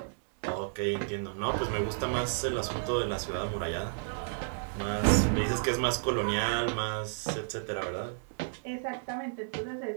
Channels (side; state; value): left; silent; 57 dB below the other